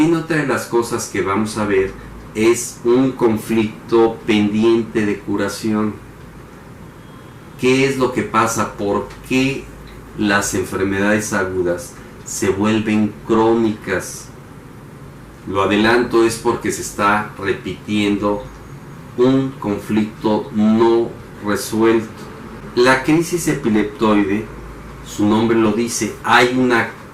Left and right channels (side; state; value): both; identical; correlation 1.00